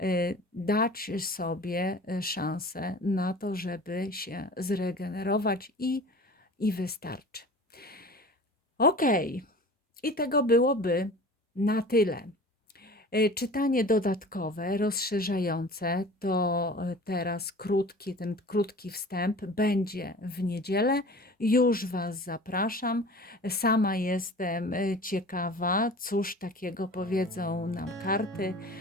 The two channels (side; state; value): both; normal; correlation 0.41